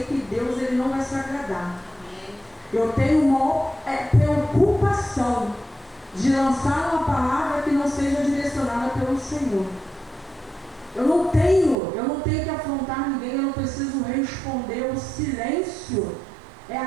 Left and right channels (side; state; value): left; drops out; at 11.8 s